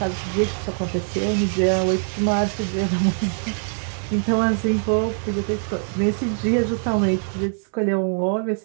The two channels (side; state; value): left; silent; digital silence